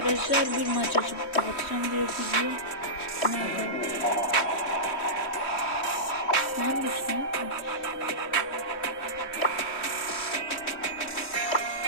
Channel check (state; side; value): late; right; 3.1 ms